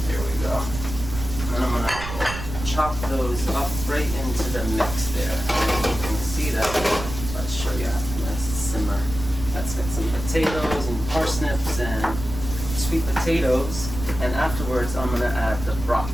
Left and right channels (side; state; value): right; noise; rumble, 8 dB below the sound